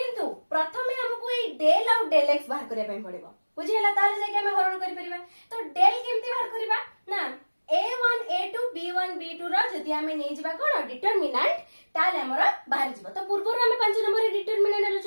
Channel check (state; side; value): inverted; both; correlation -1.00